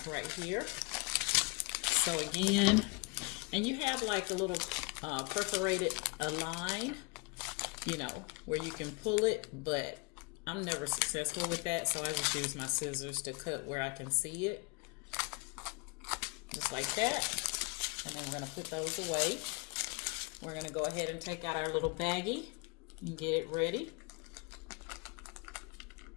right here. So again, and you have like a little perforated line, you know, where you can pull it, but I'm never successful with that, so I just use my scissors to cut where I can see it. Just like that. And then we're going to put those away. We're going to go ahead and take out our little baggie and get it ready.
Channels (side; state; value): right; quieter; 29.4 dB